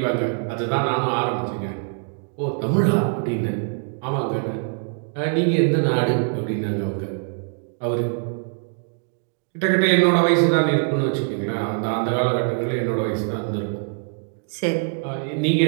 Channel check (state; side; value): silent; left; 55 dB below the other